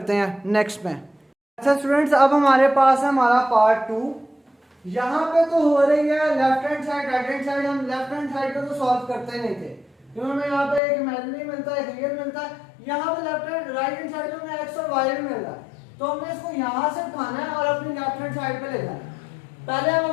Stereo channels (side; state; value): right; drops out; at 10.8 s